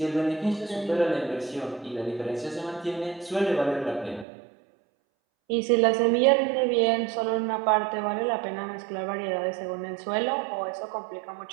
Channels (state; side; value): drops out; left; at 4.2 s